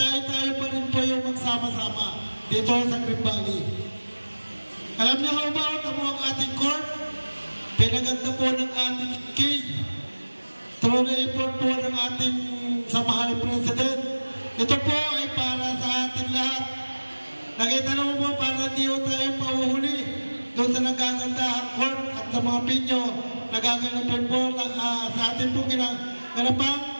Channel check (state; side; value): inverted; both; correlation -1.00